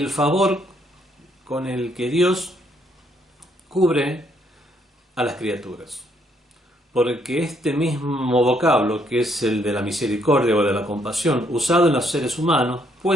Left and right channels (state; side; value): normal; both; correlation 0.71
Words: favor con el que Dios cubre a las criaturas. porque este mismo vocablo, que es el de la misericordia o de la compasión, usado en los seres humanos,